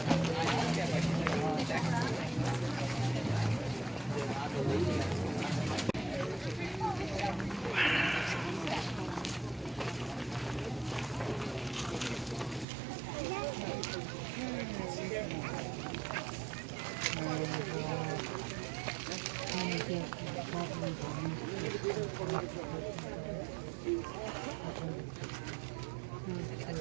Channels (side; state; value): left; drops out; at 12.7 s